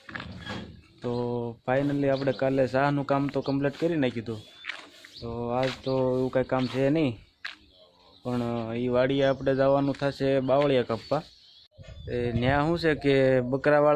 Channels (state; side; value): identical; both; correlation 1.00